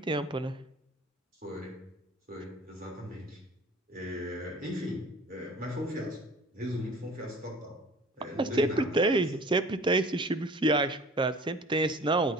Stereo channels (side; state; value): both; normal; correlation 0.46